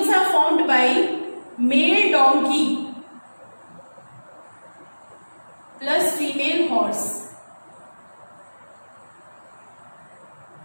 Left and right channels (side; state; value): both; inverted; correlation -1.00